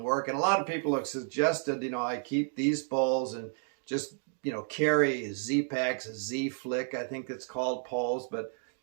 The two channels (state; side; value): silent; left; 57 dB below the other